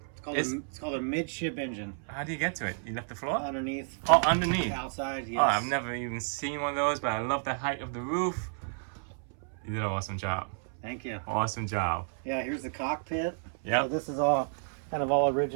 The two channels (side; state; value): left; silent; 57 dB below the other